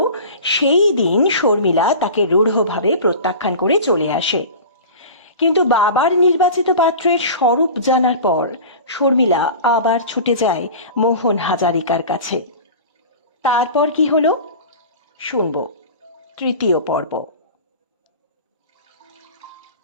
সেই দিন শর্মিলা তাকে রূঢ়ভাবে প্রত্যাখ্যান করে চলে আসে। কিন্তু বাবার নির্বাচিত পাত্রের স্বরূপ জানার পর শর্মিলা আবার ছুটে যায় মোহন হাজারিকার কাছে। তারপর কি হলো শুনব তৃতীয় পর্ব।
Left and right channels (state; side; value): inverted; both; correlation -0.35